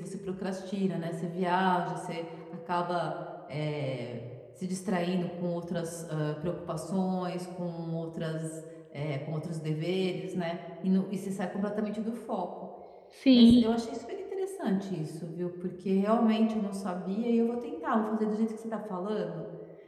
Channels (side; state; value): both; identical; correlation 1.00